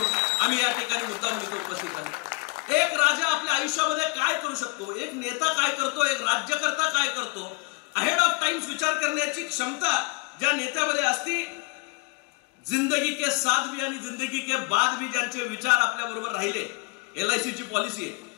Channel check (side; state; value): right; quieter; 29.6 dB